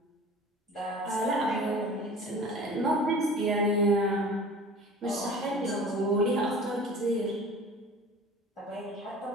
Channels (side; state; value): both; normal; correlation 0.42